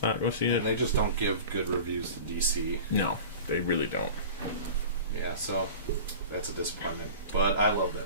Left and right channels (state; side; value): inverted; both; correlation -0.37